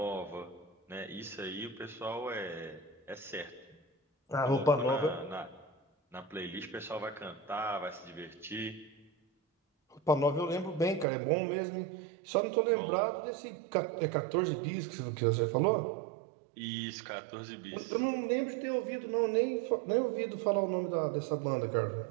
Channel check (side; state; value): left; drops out; at 11.1 s